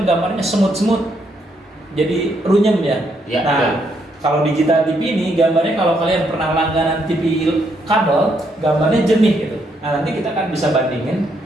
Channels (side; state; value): both; normal; correlation 0.75